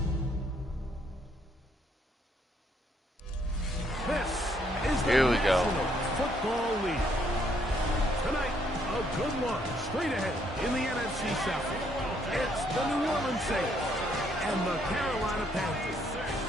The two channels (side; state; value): both; normal; correlation 0.70